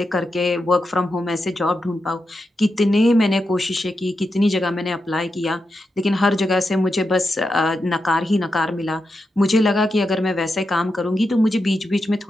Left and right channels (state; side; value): normal; both; correlation 0.87